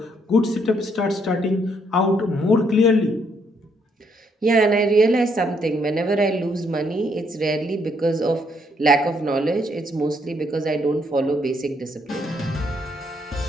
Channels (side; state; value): both; normal; correlation 0.72